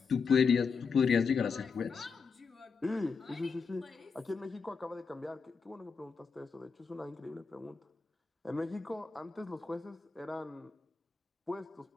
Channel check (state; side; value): quieter; right; 5.2 dB